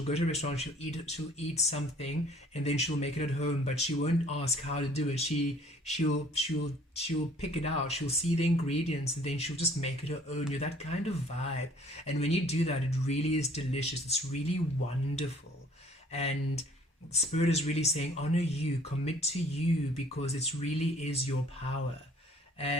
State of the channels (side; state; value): both; normal; correlation 0.55